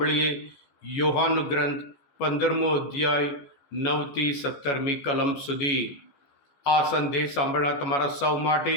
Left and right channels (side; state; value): right; late; 14 ms